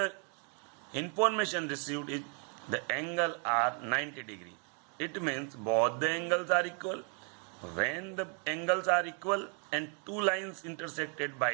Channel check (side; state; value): left; quieter; 39.3 dB